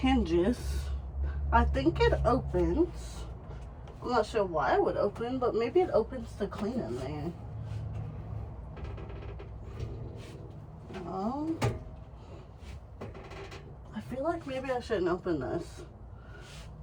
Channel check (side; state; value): both; identical; correlation 1.00